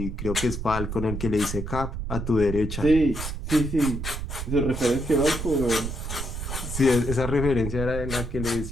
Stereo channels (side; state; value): right; noise; rumble, 5 dB below the sound